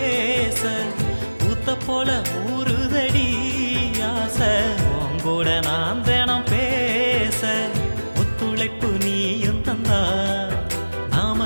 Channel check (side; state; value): both; inverted; correlation -1.00